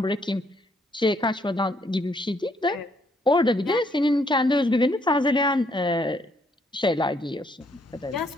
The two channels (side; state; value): both; normal; correlation 0.70